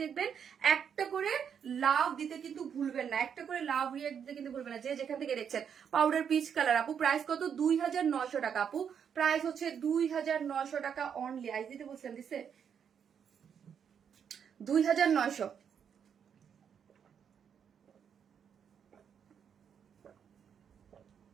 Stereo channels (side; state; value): left; quieter; 7.7 dB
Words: দেখবেন একটা করে লাভ দিতে কিন্তু ভুলবেন না, একটা করে লাভ রিয়াক্ট দিতে কিন্তু ভুলবেন না, যে যেখান থেকে দেখছেন। পাউডার পিচ কালার আপু, প্রাইস কত? 2,900 টাকা আপু, প্রাইস হচ্ছে 2,900 টাকা অনলি। আইজ দিতে বলছেন, দিছে 2,900।